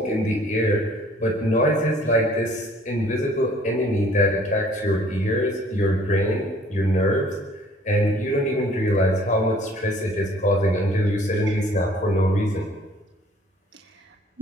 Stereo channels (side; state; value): both; normal; correlation 0.56